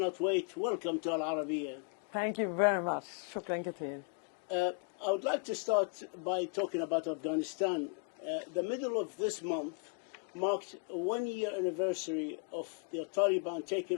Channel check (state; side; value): quieter; right; 37.8 dB